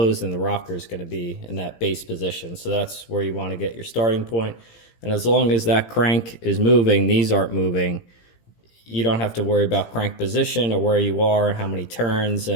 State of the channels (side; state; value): right; late; 17 ms